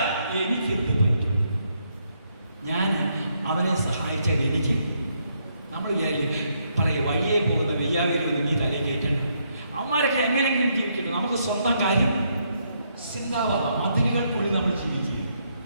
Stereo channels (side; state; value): both; inverted; correlation -0.75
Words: എനിക്ക് എന്ത് പറ്റും? ഞാൻ അവനെ സഹായിച്ചാൽ എനിക്ക്, നമ്മൾ പറയ വഴിയെ പോകുന്ന വെയ്യാവിലൊന്നും നീ തലയിൽ കയറ്റണം. അവന്മാരൊക്കെ എങ്ങനെയെങ്കിലും ജീവിക്കട്ടെ, നമുക്ക് സ്വന്തം കാര്യം ചിന്താവാം. മതിലുകൾക്കുള്ളിൽ നമ്മൾ ജീവിക്കുക.